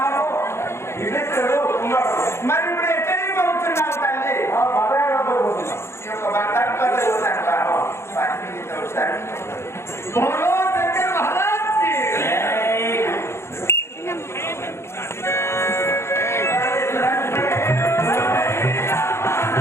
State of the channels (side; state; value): right; late; 0.13 ms